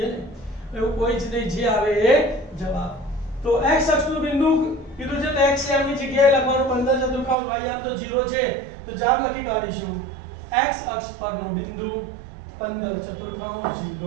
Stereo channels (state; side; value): drops out; left; at 7.4 s